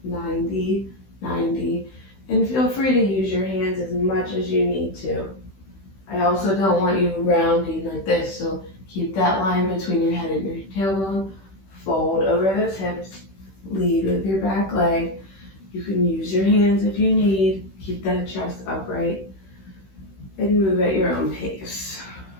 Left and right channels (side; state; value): right; late; 16 ms